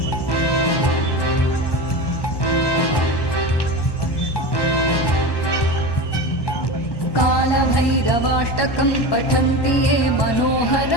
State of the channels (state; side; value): late; right; 1.1 ms